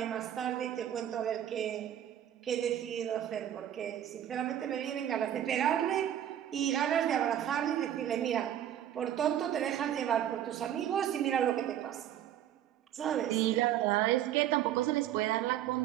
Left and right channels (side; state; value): left; quieter; 10.9 dB